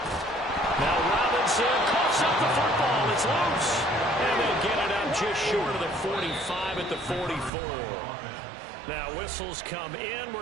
Now Robinson coughs up the football. It's loose. And they get it out just short of the 45 at the 44. Now whistles come in.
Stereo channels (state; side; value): drops out; left; at 7.5 s